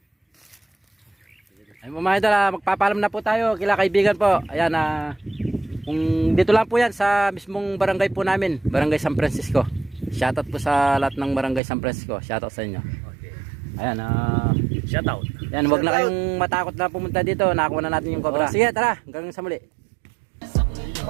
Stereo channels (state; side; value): drops out; left; at 11.6 s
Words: Ayun po mga idol, magpapalam na po tayo kila kaibigan po. Ayan, kung dito lang po yan sa mismong barangay po namin, Barangay San Francisco. Shoutout po sa lahat ng Barangay San Francisco. Shoutout sa inyo. Okay. Ayan, Shoutout. yan, wag na kayong matakot na pumunta dito. Nakuha na natin yung cobra. Sige, tara, hanggang sa muli.